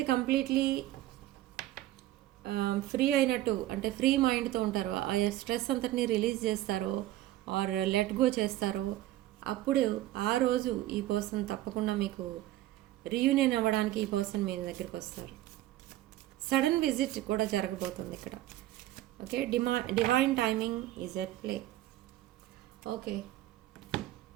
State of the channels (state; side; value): quieter; left; 15.1 dB